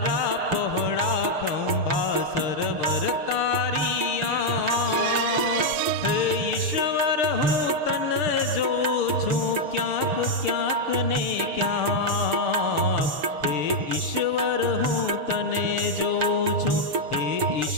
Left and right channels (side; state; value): left; late; 6.7 ms